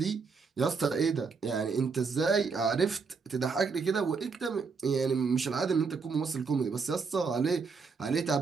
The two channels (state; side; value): quieter; left; 5.1 dB